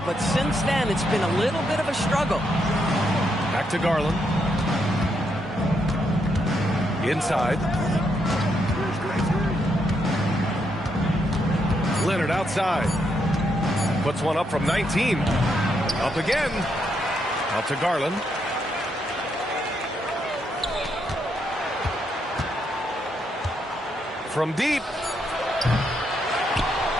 but since then it's been a little bit of a struggle. Back to Garland. Inside. Leonard outside. Puts one up from 19. Up again. Out to Garland. From deep.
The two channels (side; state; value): both; normal; correlation 0.78